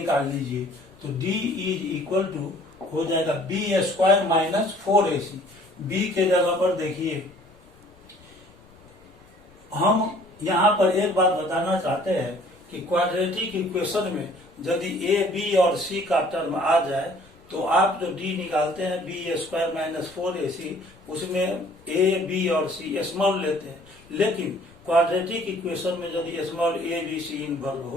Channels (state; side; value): noise; left; rumble, 27 dB below the sound